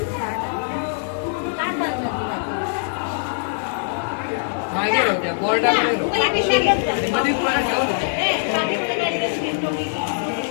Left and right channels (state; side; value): silent; right; 57 dB below the other